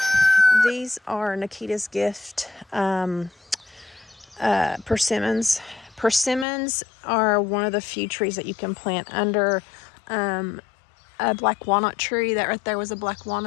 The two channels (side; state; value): right; drops out; at 6.5 s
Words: These are Nikita's Gift persimmons. Persimmons are one of the few trees that you can plant under a black walnut tree. That right there was a black